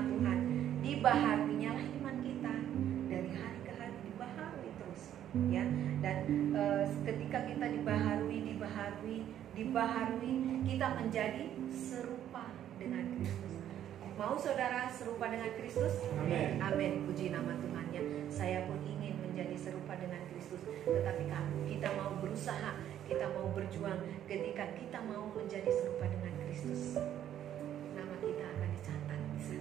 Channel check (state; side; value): quieter; left; 10.9 dB